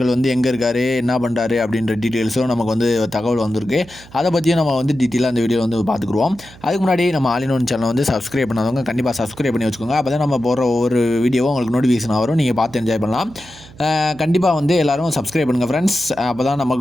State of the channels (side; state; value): right; noise; hum, 21 dB below the sound